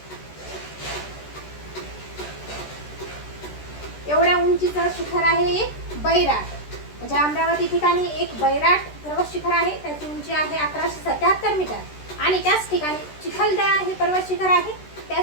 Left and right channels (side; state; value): right; late; 13 ms